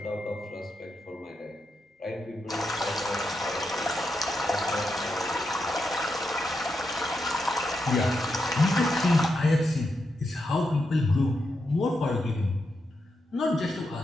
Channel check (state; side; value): normal; both; correlation 0.85